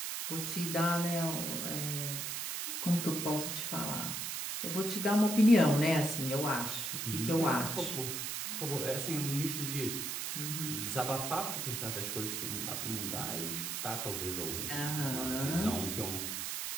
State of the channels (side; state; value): right; noise; hiss, 3 dB below the sound